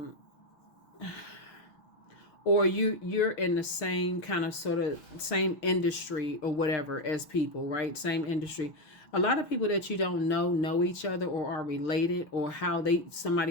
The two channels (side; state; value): right; late; 6.1 ms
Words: or you're in the same kind of sort of same industry or whatever as people, right? Same industry. A lot of people that you don't know each other or are related, or how somebody